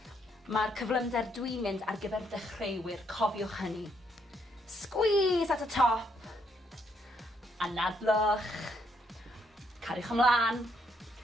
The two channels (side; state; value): both; normal; correlation 0.73